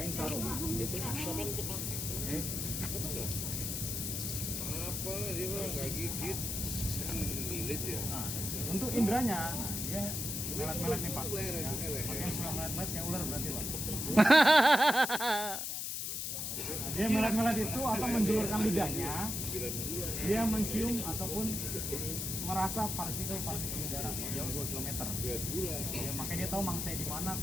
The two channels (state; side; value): noise; left; hiss, 3 dB below the sound